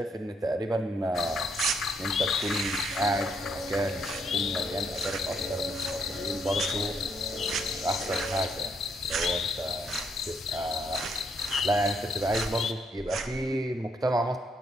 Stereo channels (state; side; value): normal; both; correlation 0.73